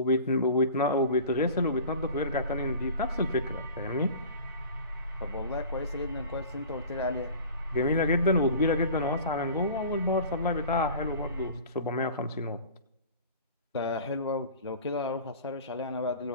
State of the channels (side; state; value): both; inverted; correlation -0.41